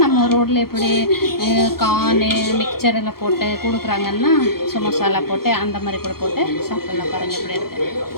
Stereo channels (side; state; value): right; late; 0.94 ms